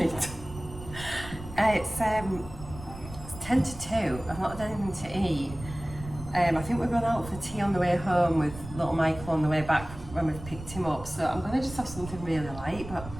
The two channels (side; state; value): right; noise; rumble, 13 dB below the sound